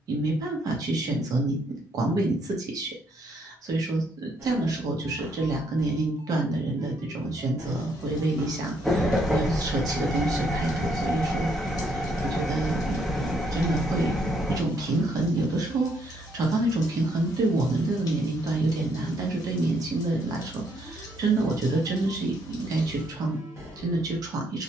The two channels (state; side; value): normal; both; correlation 0.71